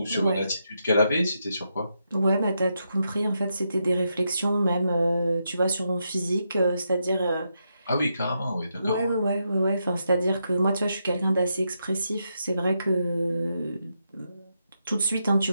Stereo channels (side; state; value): both; inverted; correlation -0.83